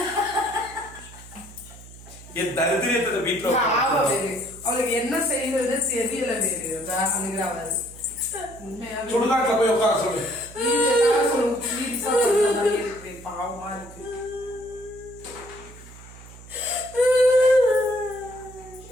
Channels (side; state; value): right; noise; hum, 18 dB below the sound